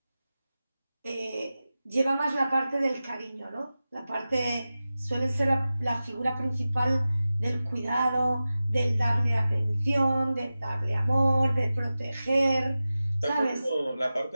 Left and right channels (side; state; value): both; inverted; correlation -0.95